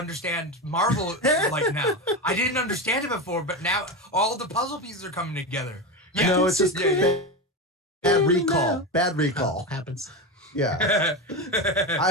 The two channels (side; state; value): both; normal; correlation 0.18